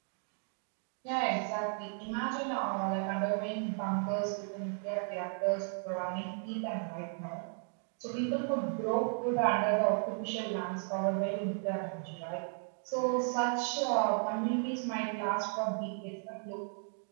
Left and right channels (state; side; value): silent; left; 55 dB below the other